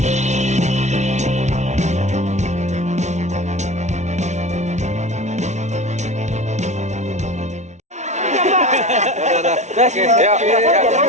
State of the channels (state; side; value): late; left; 0.33 ms